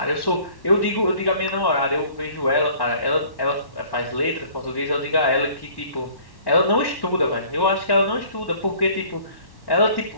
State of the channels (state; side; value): late; right; 1.1 ms